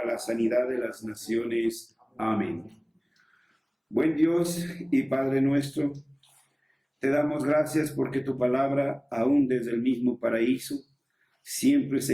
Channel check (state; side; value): identical; both; correlation 1.00